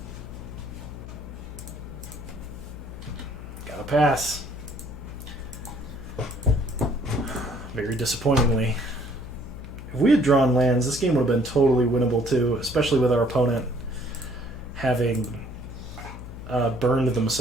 Gotta pass. Very disappointingly. If we had drawn lands, this game would have been totally winnable too, especially with our opponent having burned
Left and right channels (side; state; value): left; noise; hum, 12 dB below the sound